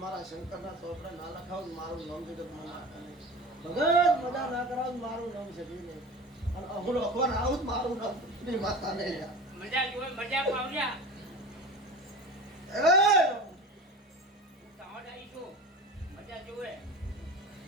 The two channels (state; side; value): normal; both; correlation 0.34